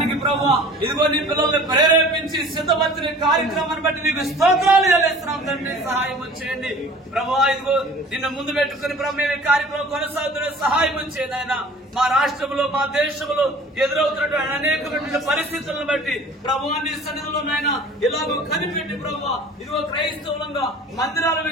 ప్రభా, ఇదిగో నీ పిల్లల్ని ప్రేరేపించి సిద్ధపరిచిన కార్యక్రమాన్ని బట్టి నీకు స్తోత్రాలు చెల్లిస్తున్నాం తండ్రి. సహాయం చేయండి ప్రభా. ఇదిగో నిన్న ముందు పెట్టుకుని ప్రభు ఈ కార్యక్రమం కొనసాగుతున్న సహాయం చేయండి ఆయన. మా రాష్ట్రంలో, మా దేశంలో ఎదురవుతున్నటువంటి అనేకమైన పరిస్థితులను బట్టి ప్రభువాన్ని సన్నిధిలో నాయన ఇలాగో కనిపెట్టి ప్రభు, ఇదిగో క్రైస్తవులంగా మందిరాల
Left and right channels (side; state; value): both; normal; correlation 0.45